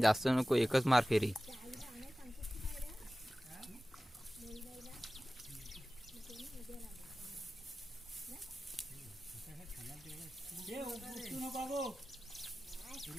जास्त नको. एकच मार फेरी.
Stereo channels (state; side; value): normal; both; correlation 0.96